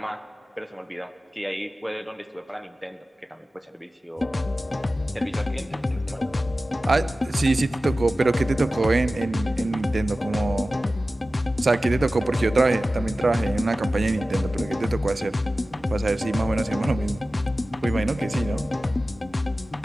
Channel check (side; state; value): both; normal; correlation 0.95